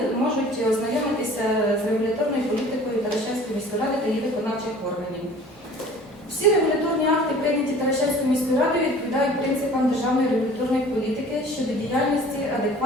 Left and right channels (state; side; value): normal; both; correlation 0.47